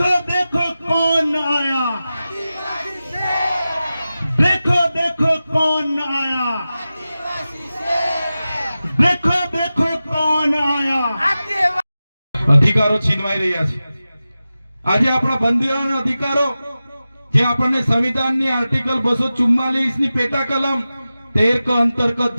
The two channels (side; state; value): both; inverted; correlation -0.94